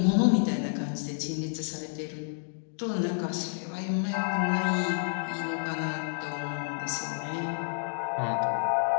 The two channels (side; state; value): right; silent; digital silence